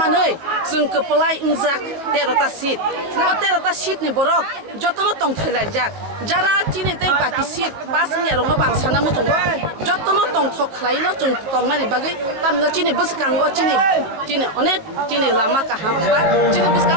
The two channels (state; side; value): late; left; 18 ms